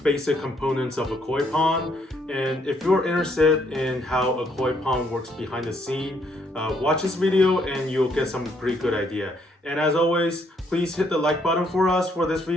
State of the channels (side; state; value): both; normal; correlation 0.70